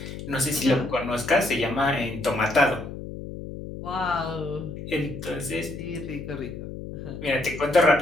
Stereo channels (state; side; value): noise; left; hum, 9 dB below the sound